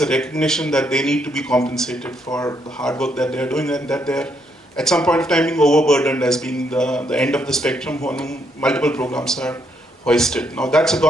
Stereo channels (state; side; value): normal; both; correlation 0.75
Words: a recognition that they need to be compensated for the hard work that they're doing, and that they're at some point of time being overburdened as being the end of the spectrum when multiple programs are hoisted. Now that's a